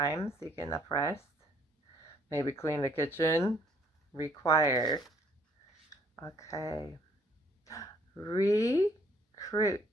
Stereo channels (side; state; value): both; normal; correlation 0.63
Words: so you get enough rest. Maybe clean the kitchen. Require. Okay. Recruit.